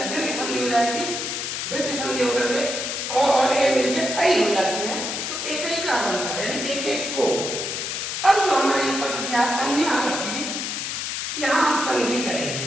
दीर्घ संधि हो जाएगी, वृद्धि संधि होकर के और ए मिलके ऐ हो जाती है, तो एकैका बनता है, यानी एक एक को। अब जो हमारा ये पद दिया अन्य आरोपी, यहाँ हम संधि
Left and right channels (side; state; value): left; noise; hiss, 3 dB below the sound